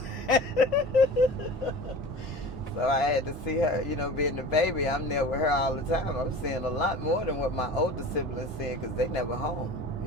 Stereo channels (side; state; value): both; normal; correlation 0.37